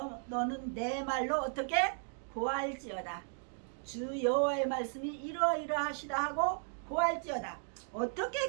내 말로 어떻게 고할지어다. 주 여호와의 말씀이 이러이러하시다 하고 고할지어다. 어떻게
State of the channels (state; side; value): silent; left; 54 dB below the other